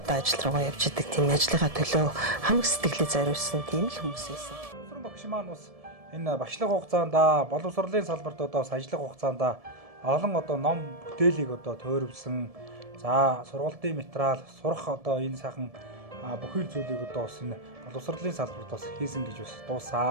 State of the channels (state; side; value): late; left; 1.7 ms